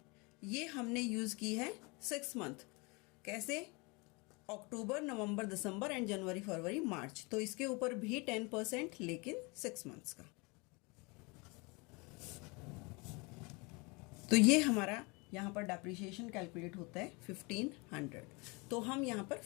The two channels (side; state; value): right; quieter; 28.3 dB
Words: ये हमने यूज़ की है 6 मंथ। कैसे? अक्टूबर, नवंबर, दिसंबर एंड जनवरी, फरवरी, मार्च। तो इसके ऊपर भी 10%, लेकिन 6 मंथ्स का। तो ये हमारा यहाँ पर डेप्रिसिएशन कैलकुलेट होता है 1500। तो हम यहाँ पर